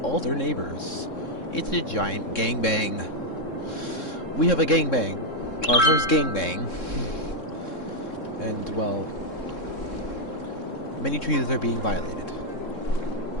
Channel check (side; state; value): right; late; 3.7 ms